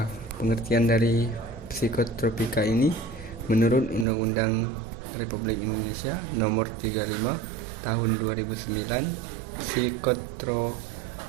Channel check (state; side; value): drops out; left; at 4.0 s